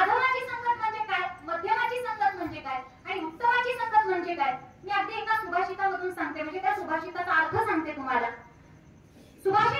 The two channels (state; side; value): identical; both; correlation 1.00